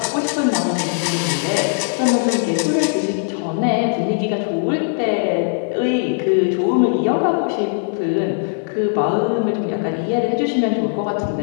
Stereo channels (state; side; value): silent; right; 56 dB below the other